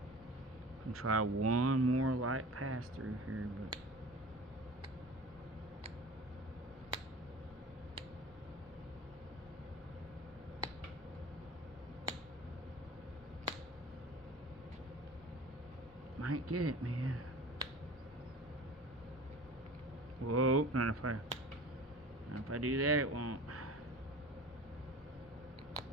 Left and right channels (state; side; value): normal; both; correlation 0.39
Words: Can try one more light pass through here, but might get it, man. Whoa, not if I do that, it won't.